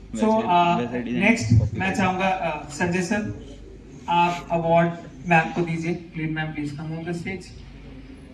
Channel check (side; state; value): both; identical; correlation 1.00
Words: सो नेक्स्ट मैं चाहूंगा संजय सर, आप अवार्ड मैम को दीजिए। Please ma'am, please come on the stage.